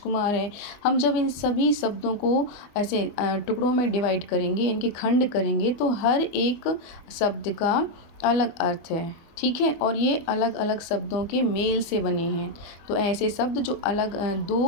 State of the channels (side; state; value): right; late; 24 ms